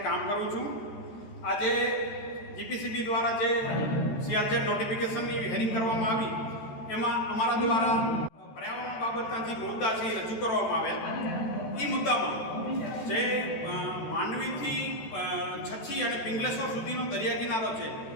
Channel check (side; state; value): right; late; 13 ms